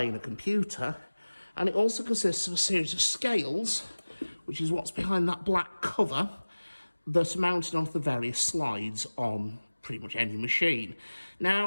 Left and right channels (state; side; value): inverted; both; correlation -1.00